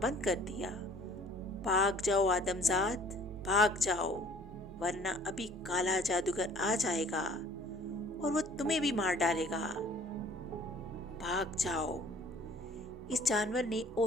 कर दिया। भाग जाओ आदमजाद, भाग जाओ, वरना अभी काला जादूगर आ जाएगा और वो तुम्हें भी मार डालेगा। भाग जाओ, इस जानवर ने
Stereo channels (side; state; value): both; normal; correlation 0.54